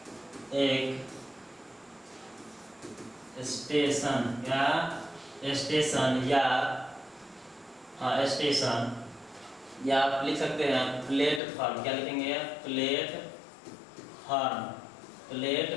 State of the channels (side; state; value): right; drops out; at 11.4 s